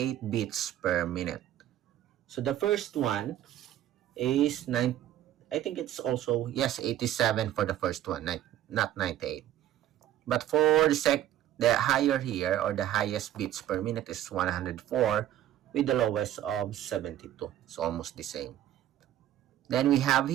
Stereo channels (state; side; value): quieter; left; 12.3 dB